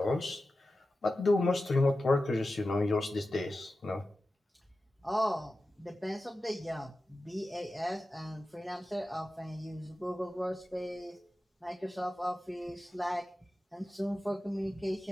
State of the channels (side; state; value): both; normal; correlation 0.93